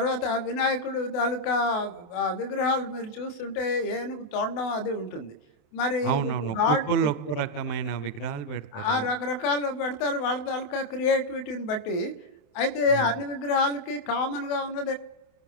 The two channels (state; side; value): late; right; 28 ms